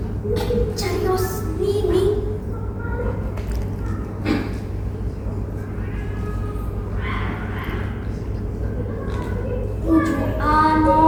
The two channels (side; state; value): both; identical; correlation 1.00